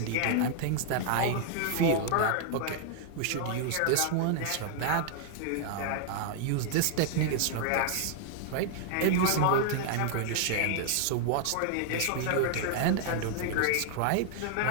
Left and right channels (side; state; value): both; different; correlation 0.00